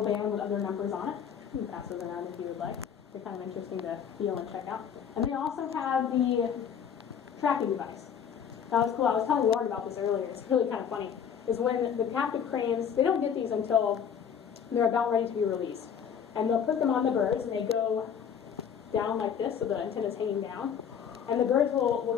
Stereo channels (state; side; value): quieter; right; 7.8 dB